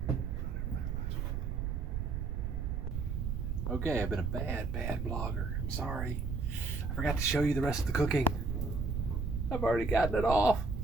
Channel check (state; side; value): noise; right; rumble, 1 dB below the sound